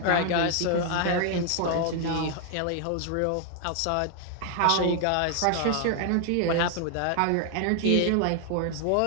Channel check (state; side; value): different; both; correlation 0.00